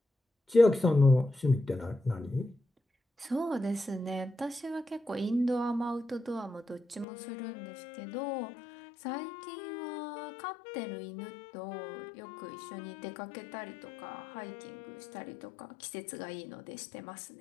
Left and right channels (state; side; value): drops out; right; at 7.1 s